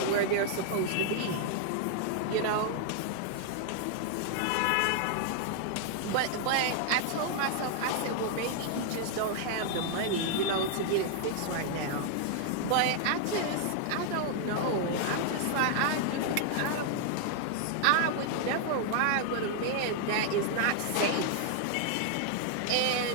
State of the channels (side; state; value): both; different; correlation 0.00